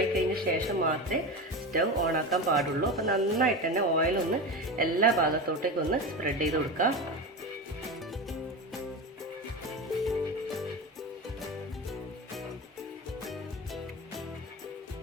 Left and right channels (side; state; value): both; normal; correlation 0.23